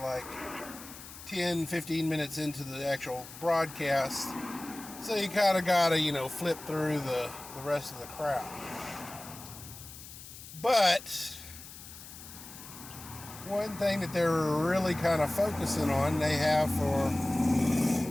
10, 15 minutes into the actual broadcast. So you kind of got to, flip through the rest of the crowd. But one thing that they're really kind of focusing on, they have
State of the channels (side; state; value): left; noise; hiss, 15 dB below the sound